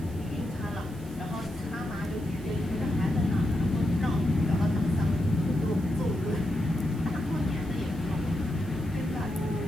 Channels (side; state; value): right; noise; hiss, 23 dB below the sound